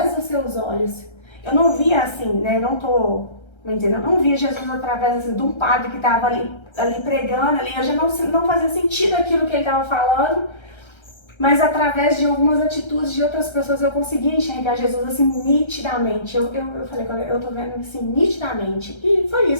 dos seus olhos. Eu não via assim, né? Eu não via Jesus através assim, de um padre que tava ali pregando ali. Eu já não fazia sentido aquilo que ele tava falando. Mas através de algumas atitudes de outras pessoas eu conseguia enxergar Jesus assim nitidamente. Eu falei, eu tô vendo assim nitidamente. E foi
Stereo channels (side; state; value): right; late; 1.3 ms